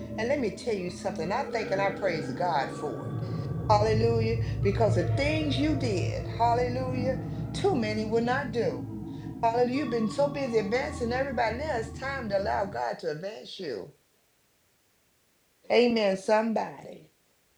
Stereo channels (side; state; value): both; identical; correlation 1.00